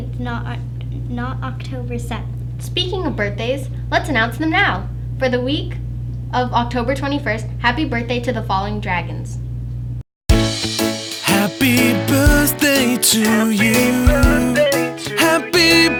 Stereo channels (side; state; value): both; identical; correlation 1.00